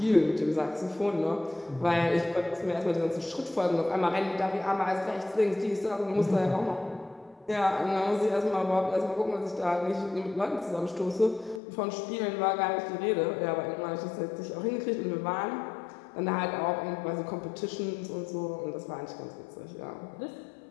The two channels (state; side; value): drops out; right; at 11.6 s